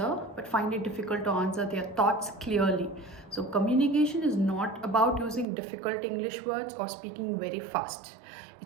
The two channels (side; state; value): left; drops out; at 5.5 s